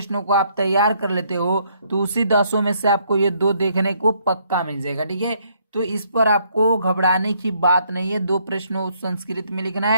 को आप तैयार कर लेते हो, तो उसी 10 में से आपको ये 2 देखने को पक्का मिल जाएगा। ठीक है, तो इस पर आपको घबराने की बात नहीं है, 2 प्रश्नों संस्कृत में लिखना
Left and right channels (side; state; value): both; inverted; correlation -0.69